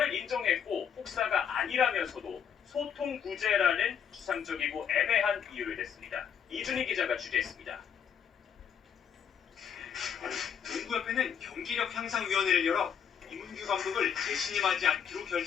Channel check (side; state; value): right; quieter; 7.8 dB